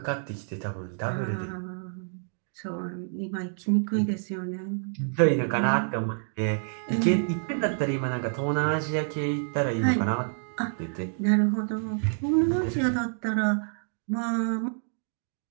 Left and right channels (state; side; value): silent; left; digital silence